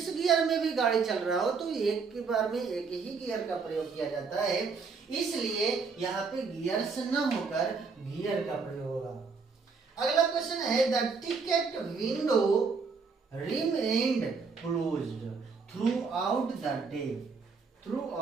गियर में भी गाड़ी चल रहा हो, तो एक के बार में एक ही गियर का प्रयोग किया जाता है। इसलिए यहाँ पे गियर्स न होकर गियर का प्रयोग होगा। अगला क्वेश्चन है the ticket window remained closed through out the day, through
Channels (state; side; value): quieter; left; 5.0 dB